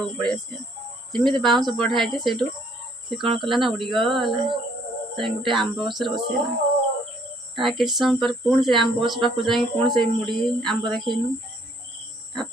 पड़े आस जमी बाउंस बढ़ाई से से कौन कला ना उड़ीगला गोटे आंब गसर बसैला ता कि समय पर पुणी से आंब गछ पाक जा पुणी से मुड़ी आंब देखनु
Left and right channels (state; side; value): normal; both; correlation 0.64